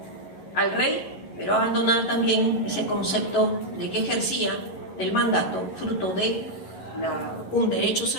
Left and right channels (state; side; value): late; right; 11 ms